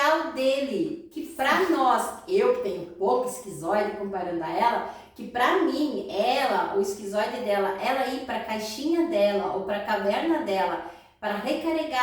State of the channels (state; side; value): identical; both; correlation 1.00